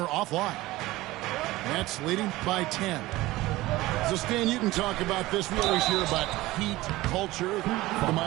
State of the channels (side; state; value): left; quieter; 18.3 dB